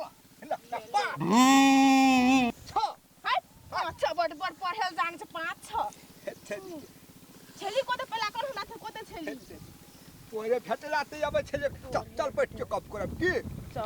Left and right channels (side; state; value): both; identical; correlation 1.00